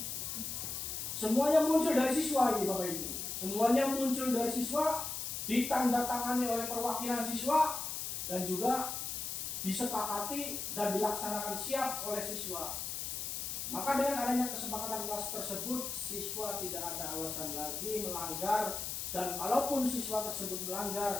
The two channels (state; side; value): noise; left; hiss, 4 dB below the sound